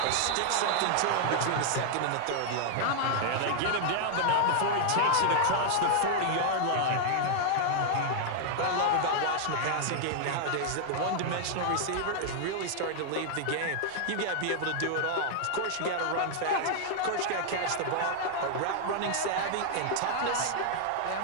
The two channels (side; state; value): both; different; correlation -0.01